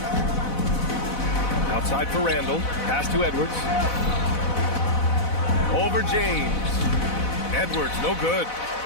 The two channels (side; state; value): right; late; 4.0 ms